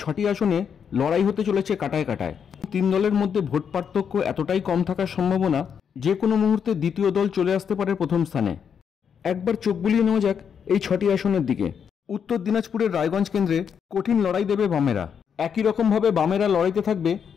6টি আসনে লড়াই হতে চলেছে কাটায় কাটায়। 3 দলের মধ্যে ভোট পার্থক্য এতটাই কম থাকার সম্ভাবনা যে কোনো মুহূর্তে দ্বিতীয় দল চলে আসতে পারে প্রথম স্থানে। একবার চোখ বুলিয়ে নেওয়া যাক এই 6টি আসনের দিকে। উত্তর দিনাজপুরের রায়গঞ্জ কেন্দ্রে কঠিন লড়াই দেবে বামেরা। একই রকমভাবে বামেরা লড়াইতে থাকবে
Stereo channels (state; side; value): quieter; right; 7.3 dB